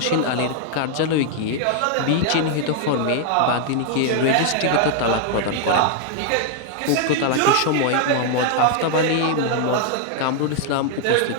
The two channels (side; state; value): both; different; correlation 0.00